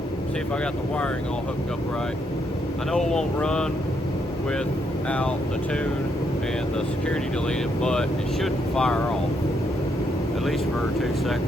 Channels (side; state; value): both; normal; correlation 0.76